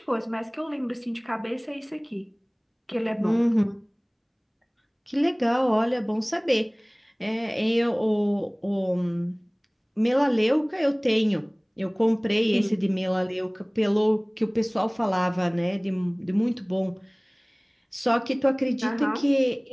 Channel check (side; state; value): both; identical; correlation 1.00